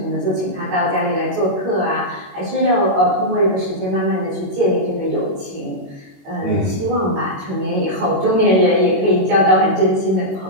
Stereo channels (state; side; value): late; left; 21 ms